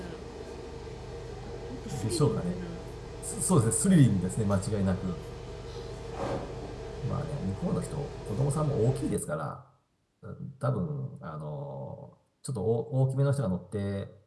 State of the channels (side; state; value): both; identical; correlation 1.00